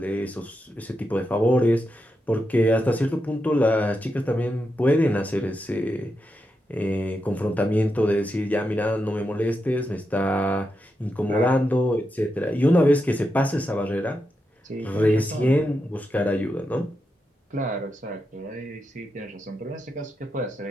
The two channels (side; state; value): both; normal; correlation 0.86